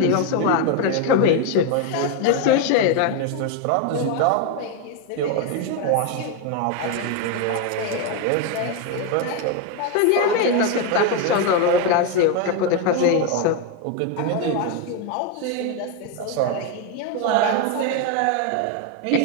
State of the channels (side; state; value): both; different; correlation 0.02